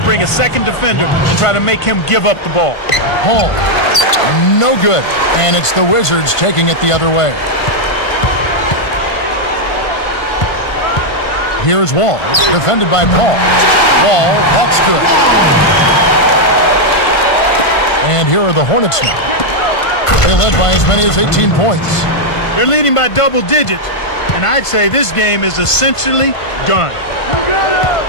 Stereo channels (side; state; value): right; late; 1.5 ms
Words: a second defender and try to make him give up the ball. Paul, no good. And it's the Wizards taking it the other way. Here's Wall, defended by Paul. Wall, that's good. And here are the Hornets now. They led by as many as 18 points. They're leading by double digits, and I'd say this game is essentially done.